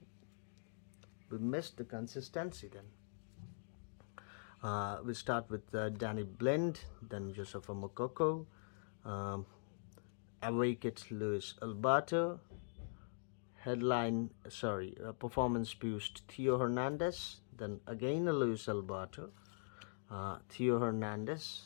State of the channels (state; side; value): silent; right; digital silence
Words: we missed the consistency then. We start with Danny Blind, then Josefa Mokoko, Awaked Luis Alberto, performance boost Theo Hernandez, then again a Luis Alberto, Theo